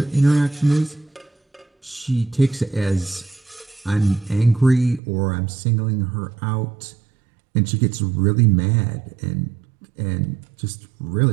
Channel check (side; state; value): left; drops out; at 5.0 s